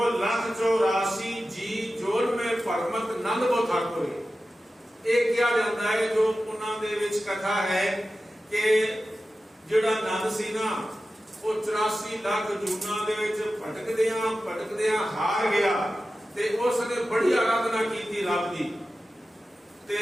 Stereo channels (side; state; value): both; normal; correlation 0.94